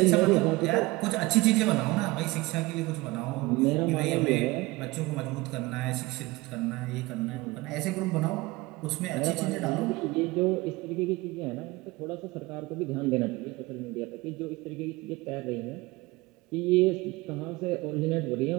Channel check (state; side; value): quieter; left; 21.3 dB